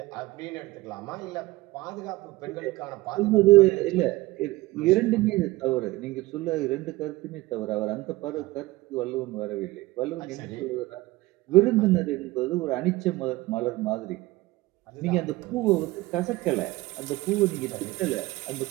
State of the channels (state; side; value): quieter; left; 19.5 dB